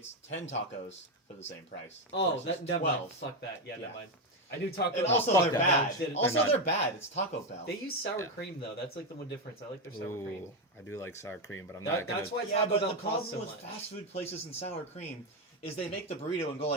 10 tacos for the same price. Oh, versus that never mind. 12. Fuck that. Yeah, Yeah. never mind. I knew Taco And Bell. also fuck they're that. bad. They're Also not. they're bad. It's Taco Bell. They use sour Yeah. cream though. That's like the one difference. I like their sour cream. Ooh, I do like sour cream, but I'm That- not gonna. that's why Yeah, Taco but Bell the problem costs so with much. fast food places and sour cream is they make the burrito and go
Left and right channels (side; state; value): both; normal; correlation 0.08